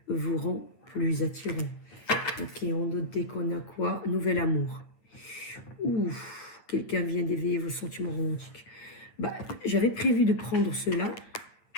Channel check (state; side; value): late; right; 8.9 ms